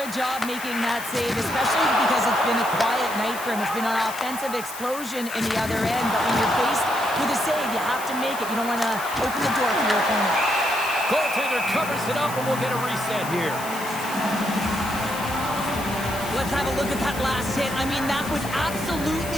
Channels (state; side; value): noise; left; hiss, 12 dB below the sound